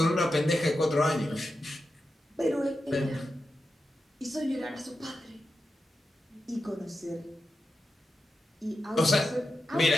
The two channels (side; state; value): both; normal; correlation 0.90